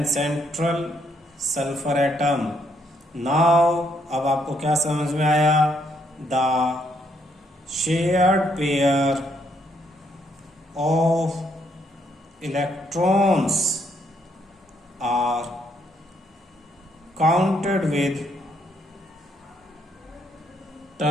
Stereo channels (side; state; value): both; normal; correlation 0.72